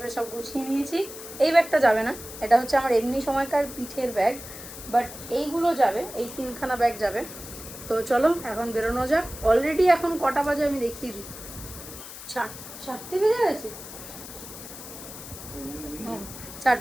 সব গুছিয়ে নিয়েছি। এই ব্যাগটা যাবে না, এটা হচ্ছে আমার এমনি সময়কার পিঠের ব্যাগ, বাট এইগুলো যাবে, এই 3খানা ব্যাগ যাবে। তো চলো এখন বেরোনো যাক। অলরেডি এখন কটা বাজে আমি দেখিয়ে দিই। 4টে বেজে গেছে।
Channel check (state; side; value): noise; left; hiss, 13 dB below the sound